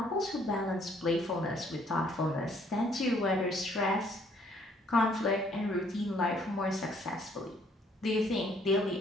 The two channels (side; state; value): both; normal; correlation 0.64